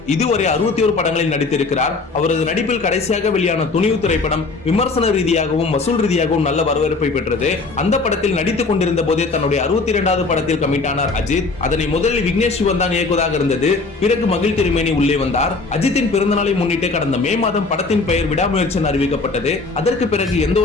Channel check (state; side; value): quieter; right; 3.8 dB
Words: இதுவரை 61 படங்களில் நடித்திருக்கிறார். அவரது நடிப்பில் கடைசியாக வெளியான துணிவு திரைப்படம் விமர்சன ரீதியாகவும் வசூல் ரீதியாகவும் நல்ல வரவேற்பை பெற்றது. அந்த படத்தில் நடித்துக் கொண்டிருந்த போதே தன்னுடைய 62வது படத்தில் கமிட் ஆனார் அஜித். அதனை முதலில் விக்னேஷ் சிவன் தான் இயக்குவதாக இருந்தது. பிறகு மகிழ் திருமேனி உள்ளே வந்தார். அஜித்தின் பிறந்தநாளை முன்னிட்டு கடந்த மே மாதம் படத்தின் பெயர் விடாமுயற்சி அறிவிக்கப்பட்டது. அதற்கு பிறகு எந்த